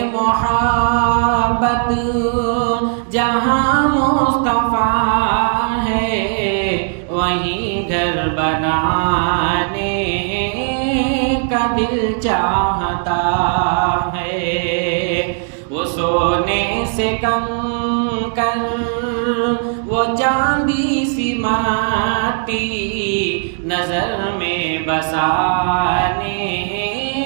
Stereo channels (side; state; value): left; silent; 59 dB below the other